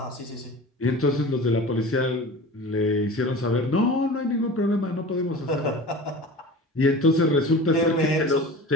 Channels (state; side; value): normal; both; correlation 0.36